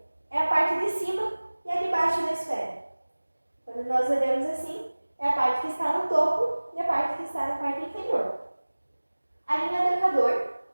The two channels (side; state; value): both; inverted; correlation -1.00